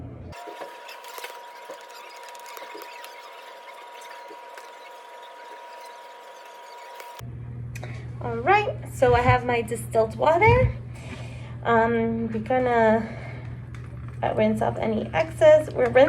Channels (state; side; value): identical; both; correlation 1.00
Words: All right, so I have my distilled water. We're gonna rinse off any excess. We're